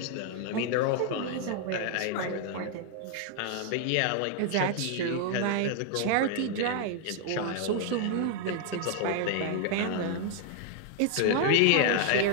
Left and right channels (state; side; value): different; both; correlation 0.00